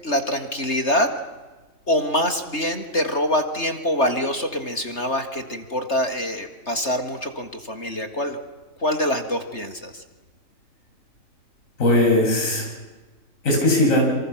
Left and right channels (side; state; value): right; late; 3.3 ms